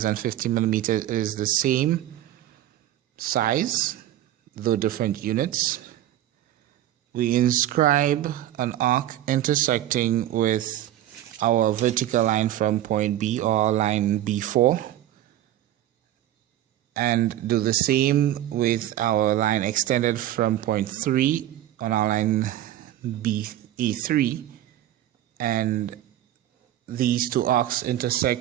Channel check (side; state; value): left; quieter; 13.0 dB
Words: and 50 millimeters is the same size, though different units. We inscribe an arc intersecting with our vertical line from point B, or line B4, and do the same with our line extended from point 3 on our line A3, and these two arcs